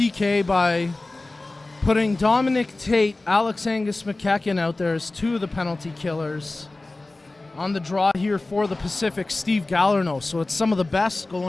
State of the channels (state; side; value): quieter; right; 3.0 dB